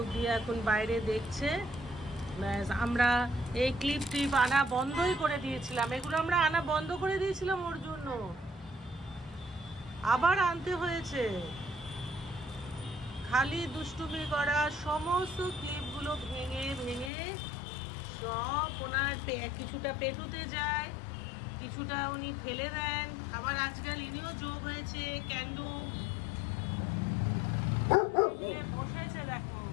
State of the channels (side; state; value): right; drops out; at 17.1 s